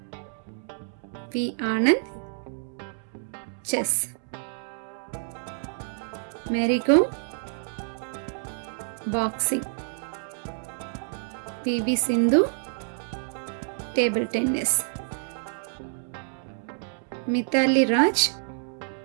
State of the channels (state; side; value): silent; left; 60 dB below the other